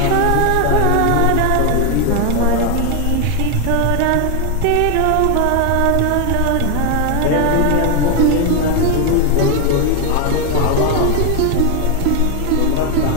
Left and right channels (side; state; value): both; different; correlation 0.01